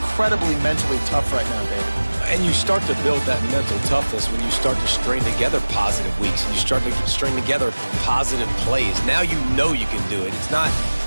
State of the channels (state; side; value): inverted; both; correlation -1.00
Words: mentally tough right now, David. And you start to build that mental toughness when you start to string together positive weeks and you start to string together positive plays. Now you know you can do it. It's not,